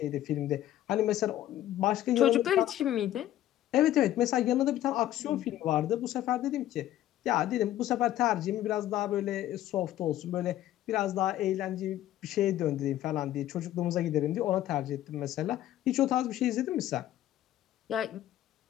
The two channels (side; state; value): right; quieter; 13.1 dB